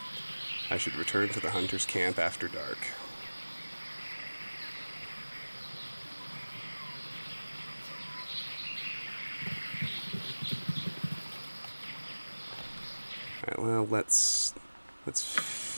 I should return to the hunter's camp after dark. Alright, well, let's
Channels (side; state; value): both; inverted; correlation -1.00